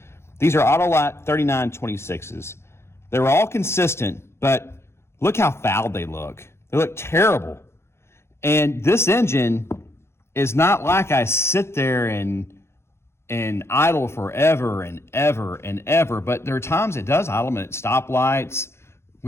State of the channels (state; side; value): late; right; 0.12 ms